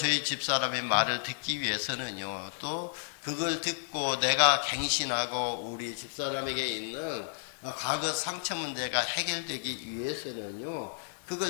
집사람의 말을 듣기 위해서는요, 또 그걸 듣고 내가 갱신하고 우리 집사람에게 있는 과거 상처 문제가 해결되기 위해서는요,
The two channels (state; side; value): silent; right; digital silence